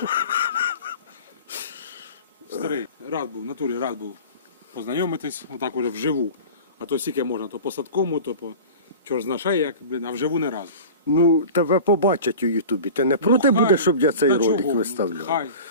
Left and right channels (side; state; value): both; inverted; correlation -0.36